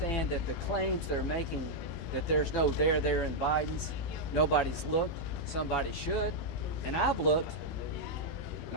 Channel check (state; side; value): late; right; 18 ms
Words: that the claims they're making that there's no there in Biden's, nobody's looked, somebody should, and I've looked, and